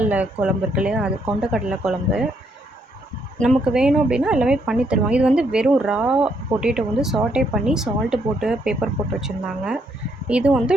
குழம்பு இருக்கு இல்லையா? அது கொண்டக்கடலை குழம்பு. நமக்கு வேணும் அப்படின்னா எல்லாமே பண்ணி தருவாங்க. இது வந்து வெறும் ரா பொட்டேட்டோ வந்து சாட்டே பண்ணி சால்ட்டு போட்டு பெப்பர் போட்டு வச்சுருந்தாங்க. இது வந்து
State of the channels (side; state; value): both; normal; correlation 0.73